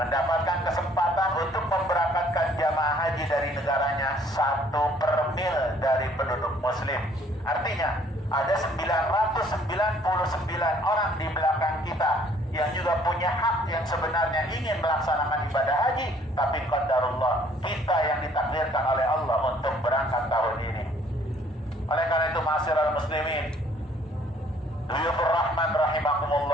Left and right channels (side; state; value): both; normal; correlation 0.60